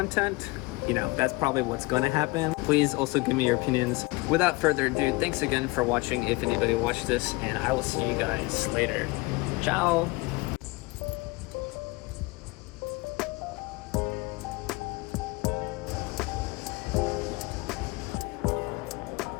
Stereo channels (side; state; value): right; quieter; 23.6 dB